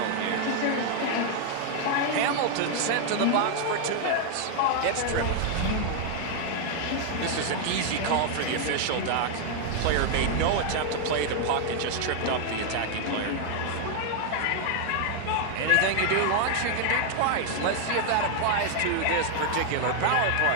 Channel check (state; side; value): different; both; correlation 0.00